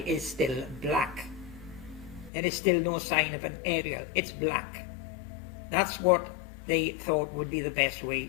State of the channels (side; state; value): right; drops out; at 2.3 s